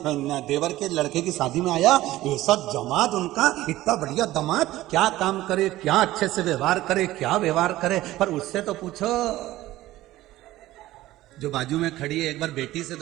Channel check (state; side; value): quieter; left; 16.1 dB